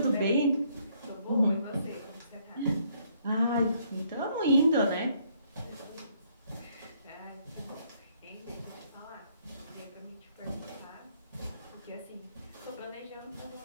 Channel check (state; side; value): inverted; both; correlation -0.68